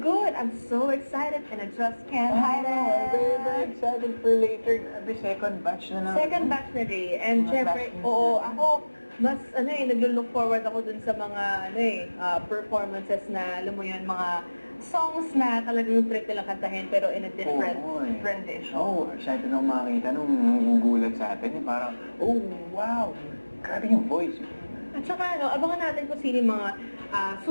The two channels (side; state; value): both; inverted; correlation -1.00